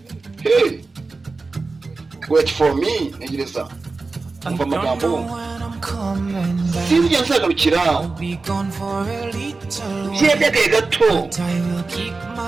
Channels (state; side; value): quieter; left; 3.8 dB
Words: Hey. Wait for me. Tegereza. Umva amagambo. Sinjya nzagarukira. Byebye gato.